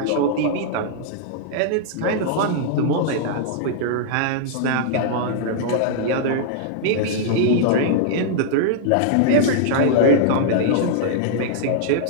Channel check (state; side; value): different; both; correlation -0.01